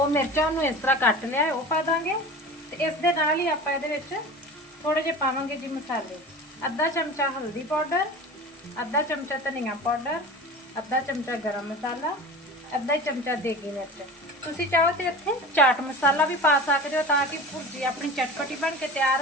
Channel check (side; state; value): both; normal; correlation 0.34